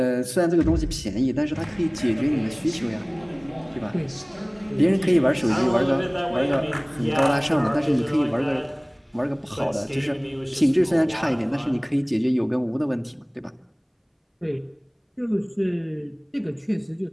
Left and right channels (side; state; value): both; identical; correlation 1.00